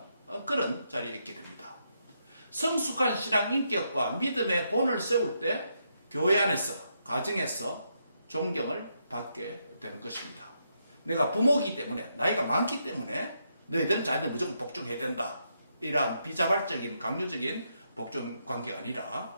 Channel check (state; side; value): inverted; both; correlation -0.80